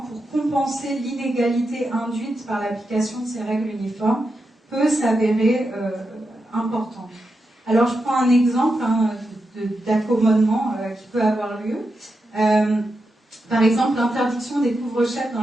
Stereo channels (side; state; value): both; normal; correlation 0.87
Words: pour compenser l'inégalité induite par l'application de ces règles uniformes peut s'avérer importante. Alors je prends un exemple d'accommodement qui peut avoir lieu. Par exemple, l'interdiction des couvre-chefs dans